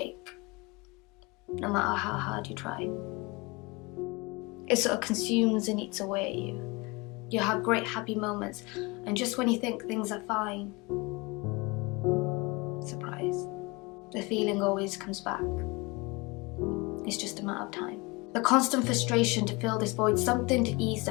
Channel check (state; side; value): quieter; right; 25.9 dB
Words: no matter how hard you try. It sort of consumes and eats away at you. You have great happy moments, and just when you think things are fine, surprise, the feeling always comes back. It's just a matter of time. The constant frustration to fill this void, something to ease